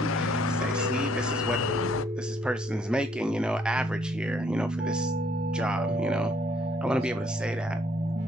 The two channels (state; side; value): normal; both; correlation 0.66